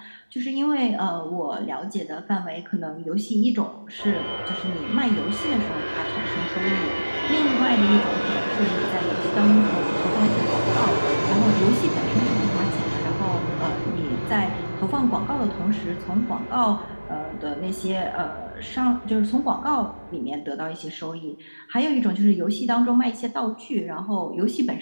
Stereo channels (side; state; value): both; inverted; correlation -1.00